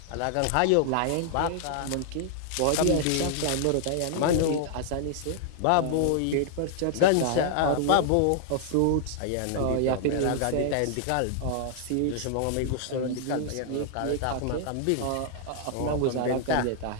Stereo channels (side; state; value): both; different; correlation 0.00